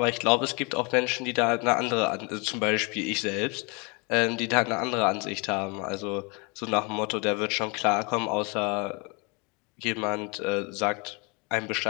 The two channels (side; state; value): right; quieter; 30.8 dB